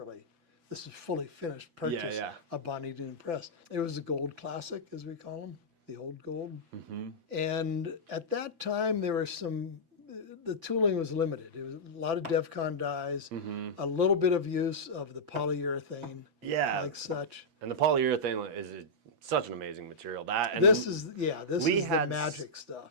This is fully finished purchase, a Bonny Doon press. It was a gold classic, as we call them, the old gold. And at that time, there were the tooling was limited. It was a lot of DEFCON dies, a little bit of use of the polyurethane, like such. And the polyurethane is such an amazing material. This is the magic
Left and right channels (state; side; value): late; left; 6.0 ms